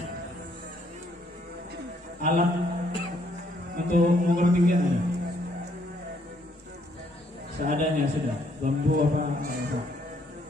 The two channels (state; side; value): normal; both; correlation 0.69